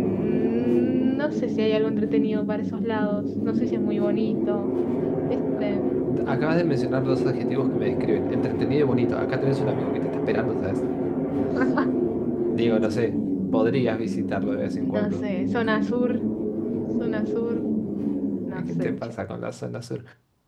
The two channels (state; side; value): identical; both; correlation 1.00